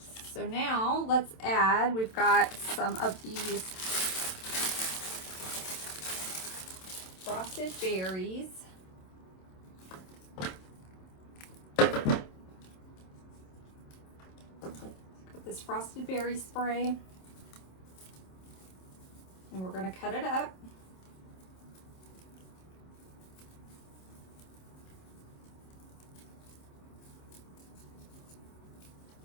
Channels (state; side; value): late; right; 27 ms